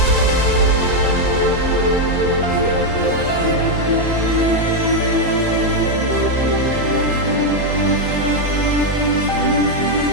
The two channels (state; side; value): late; right; 2.1 ms